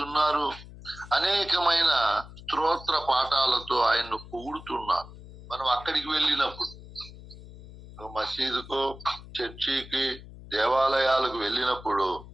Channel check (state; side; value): noise; left; hum, 17 dB below the sound